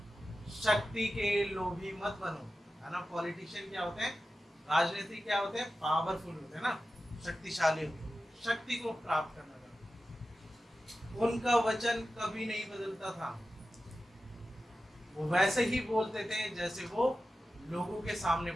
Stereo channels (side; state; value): both; normal; correlation 0.93